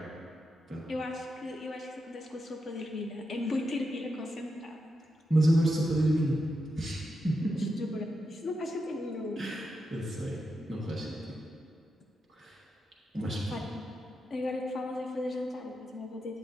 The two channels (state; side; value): normal; both; correlation 0.86